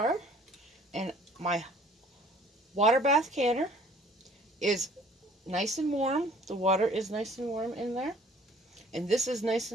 and my water bath canner is nice and warm. The water is nice and warm in there. And this is nice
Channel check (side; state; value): both; normal; correlation 0.55